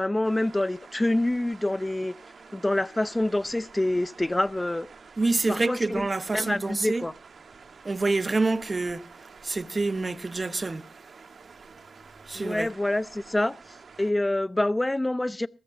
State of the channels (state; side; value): normal; both; correlation 0.97